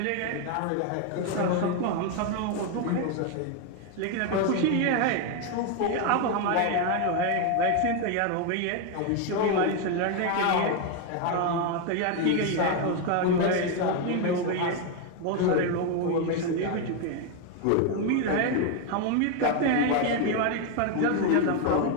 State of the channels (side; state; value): both; different; correlation 0.01